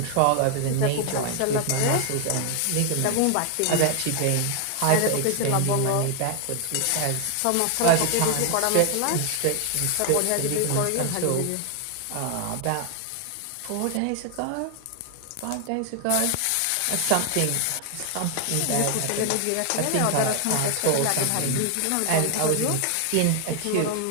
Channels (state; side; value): different; both; correlation 0.00